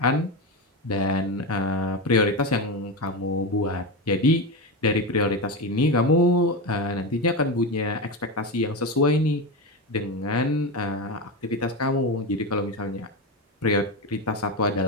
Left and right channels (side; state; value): both; normal; correlation 0.16